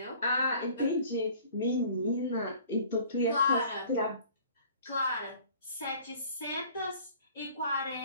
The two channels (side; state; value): both; inverted; correlation -0.50